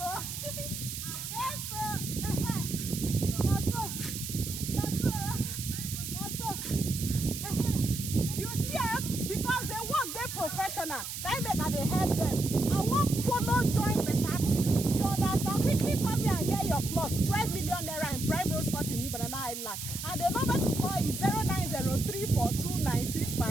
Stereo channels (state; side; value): noise; right; hiss, 7 dB below the sound